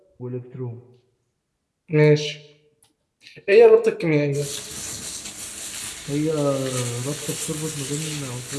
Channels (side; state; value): both; identical; correlation 1.00